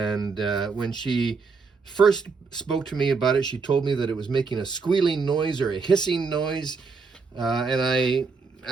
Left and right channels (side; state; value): left; quieter; 4.7 dB